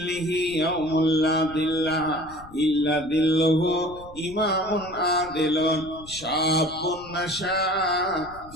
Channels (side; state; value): left; noise; rumble, 19 dB below the sound